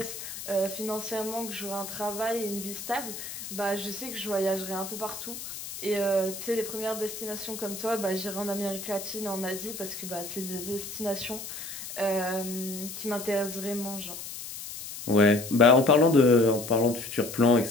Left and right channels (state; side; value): noise; left; hiss, 9 dB below the sound